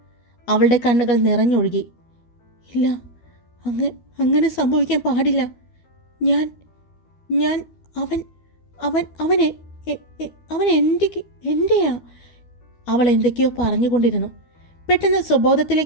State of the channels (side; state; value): right; late; 12 ms